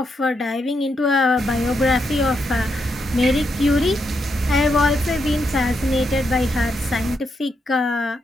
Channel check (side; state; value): both; normal; correlation 0.81